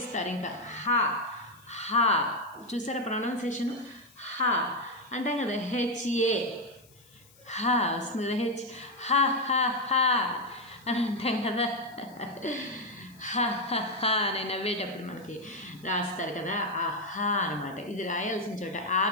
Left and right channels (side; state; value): left; noise; hiss, 27 dB below the sound